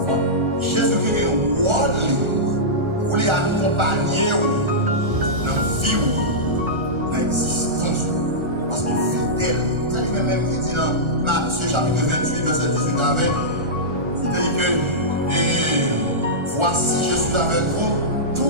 Jésus-Christ est un rôle pour les accompagner dans la vie, dans l'existence, parce qu'il est fidèle. C'est lui-même qui dit dans Matthieu chapitre 28, verset 18 à 20, il dit que voici, je suis avec vous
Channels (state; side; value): late; left; 1.4 ms